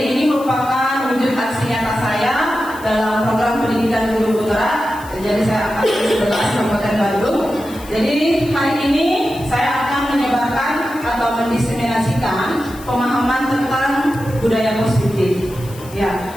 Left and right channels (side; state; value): left; noise; hiss, 20 dB below the sound